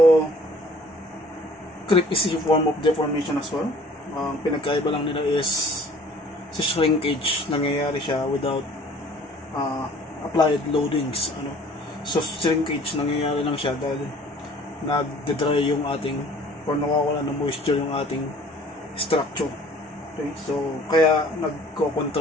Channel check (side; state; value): both; normal; correlation 0.52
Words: creep is a form of deformation as well. Ang pinagkaiba lang nila is sa shrinkage, nangyayari siya without applied loadings, So, shrinkage nangyayari lang siya dahil nagde-dry yung ating or nawawala ng moisture yung ating structure. Okay? So, kaya